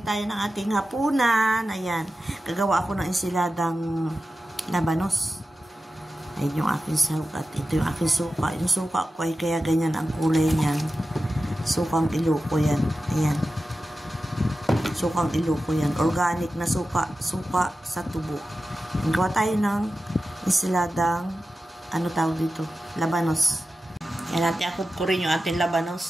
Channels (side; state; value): both; normal; correlation 0.93